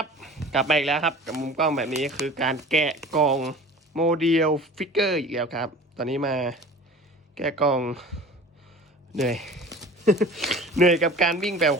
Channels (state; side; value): normal; both; correlation 0.41